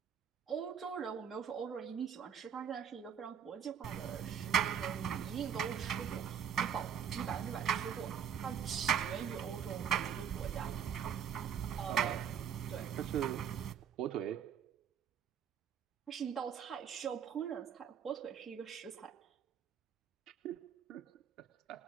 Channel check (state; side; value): quieter; left; 8.2 dB